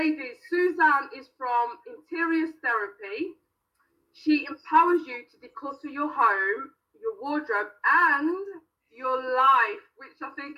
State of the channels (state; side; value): identical; both; correlation 1.00